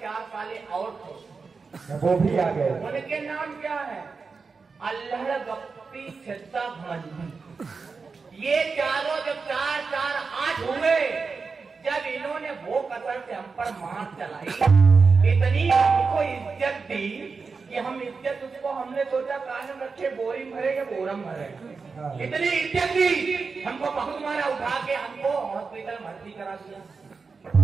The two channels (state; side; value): quieter; left; 4.7 dB